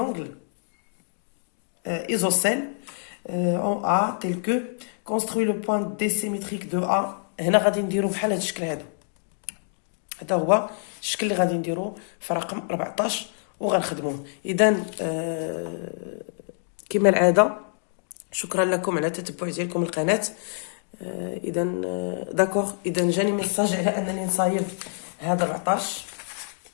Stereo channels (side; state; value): right; silent; digital silence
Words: isocèle en A tel que construit le point D symétrique de A. هنا غادي نديرو بحال هاد الشكل هذا. هذا هو الشكل اللي غادي نديرو في رقم 14 وغنخدموه. اذا كما العاده شكرا لكم على التتبع ديالكم القناه. اذا داكوغ، اذا جاني ميساج على انني نصايب هذا 14.